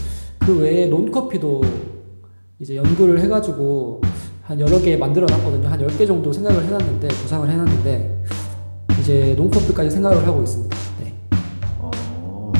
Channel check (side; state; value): both; inverted; correlation -1.00